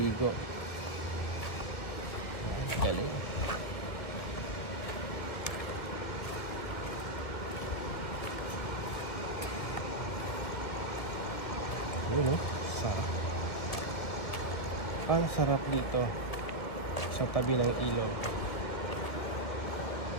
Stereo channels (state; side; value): late; right; 1.5 ms